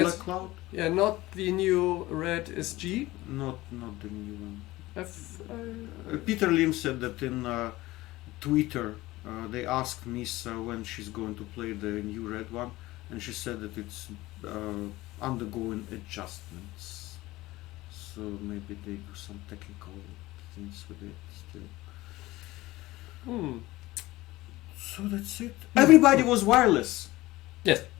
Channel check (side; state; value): right; quieter; 18.5 dB